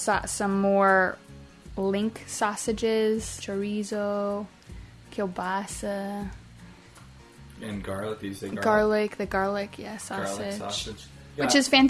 more link sausages, chorizo, kielbasa. And garlic, you say garlic? The garlic, yeah, sausage. Garlic sausage. Yeah. Which is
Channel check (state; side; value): identical; both; correlation 1.00